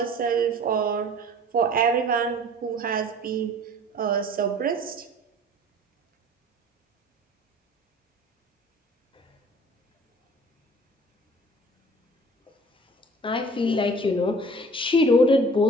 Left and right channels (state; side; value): normal; both; correlation 0.47